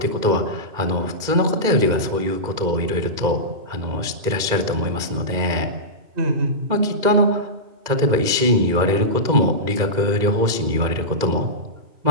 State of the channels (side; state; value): left; late; 2.1 ms